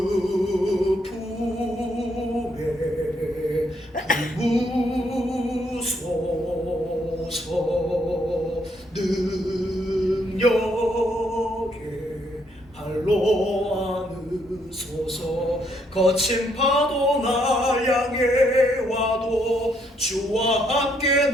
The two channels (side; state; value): both; normal; correlation 0.72